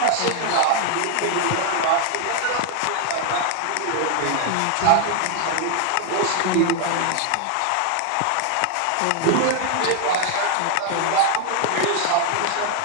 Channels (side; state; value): both; different; correlation 0.01